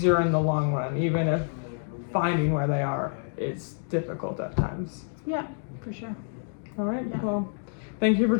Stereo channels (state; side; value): silent; right; digital silence